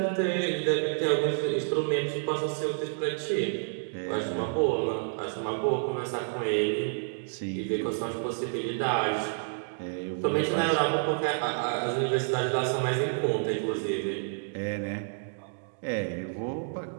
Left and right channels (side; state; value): left; silent; digital silence